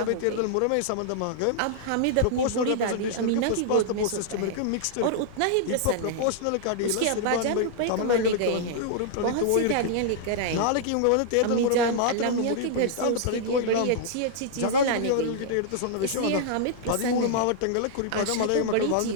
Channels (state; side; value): different; both; correlation -0.01